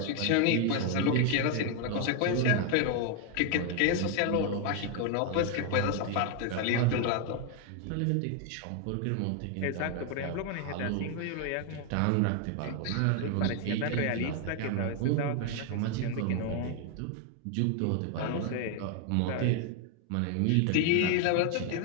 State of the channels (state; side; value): different; both; correlation 0.01